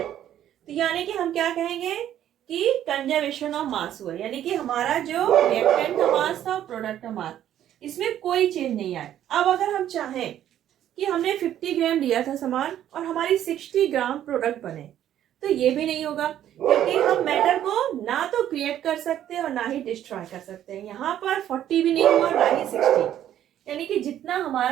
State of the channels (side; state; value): left; quieter; 11.3 dB